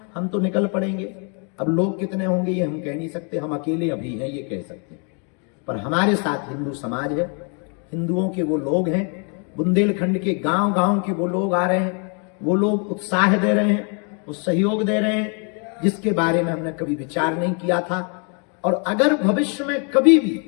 हम तो निकल पड़ेंगे। अब लोग कितने होंगे ये हम कह नहीं सकते, हम अकेले अभी हैं ये कह सकते हैं, पर हमारे साथ हिंदू समाज है, हिंदुओं के वो लोग हैं, बुंदेलखंड के गांव गांव के वो लोग आ रहे हैं, वो लोग उत्साह दे रहे हैं, वो सहयोग दे रहे हैं, जिसके बारे में हमने कभी विचार नहीं किया था। और अगर भविष्य में कभी भी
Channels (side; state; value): right; quieter; 37.9 dB